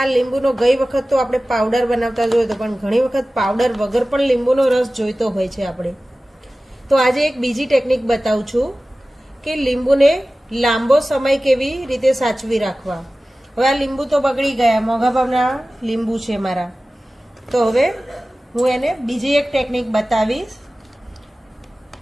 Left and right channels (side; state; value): both; normal; correlation 0.96